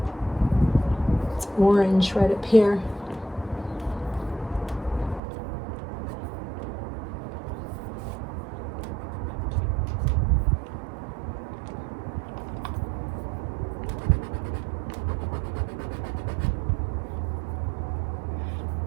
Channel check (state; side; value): drops out; left; at 5.2 s